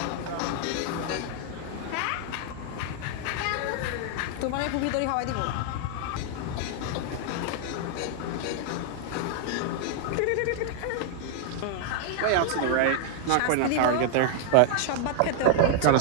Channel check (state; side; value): different; both; correlation 0.00